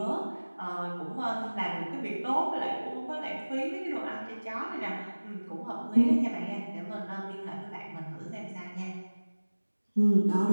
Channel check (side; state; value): both; inverted; correlation -1.00